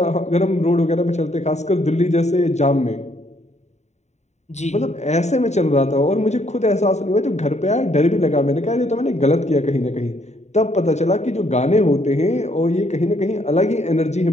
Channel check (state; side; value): late; right; 0.33 ms